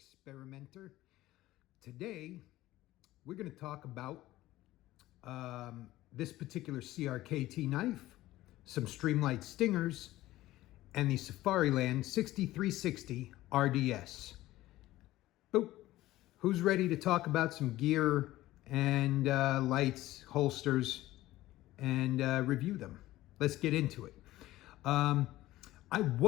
Today, we're going to talk about this particular CRKT knife, some Streamlight Stingers, and the Safariland 6360RDS. Boop. Who's ready to talk about some gear and lights, holsters, and review them? Let's get into it. I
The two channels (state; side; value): quieter; right; 16.3 dB